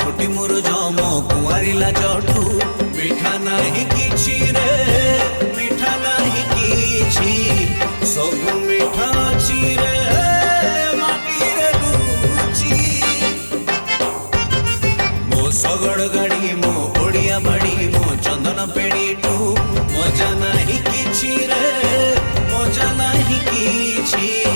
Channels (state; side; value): inverted; both; correlation -1.00